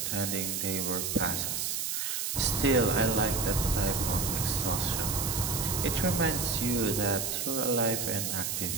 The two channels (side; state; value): right; noise; hiss, 1 dB below the sound